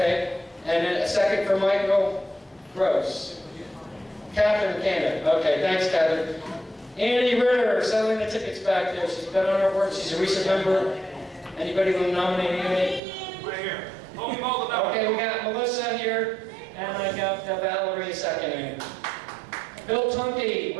And then a second for Michael Gross. Catherine Cannon, okay, thanks Catherine. Andy Ritter, selling the tickets back there. She's been on our board, she's a recent member. Anybody want to nominate Andy? Right here. Hold me all the Okay, we got Melissa here, and I got Valerie seconding. Bill Tunke,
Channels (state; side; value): drops out; left; at 13.0 s